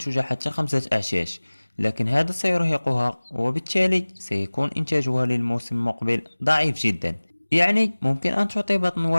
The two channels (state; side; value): inverted; both; correlation -1.00